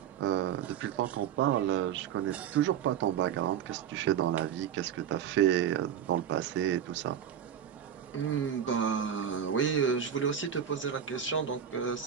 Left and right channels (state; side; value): quieter; left; 9.0 dB